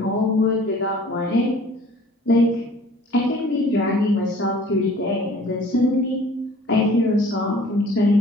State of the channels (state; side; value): normal; both; correlation 0.50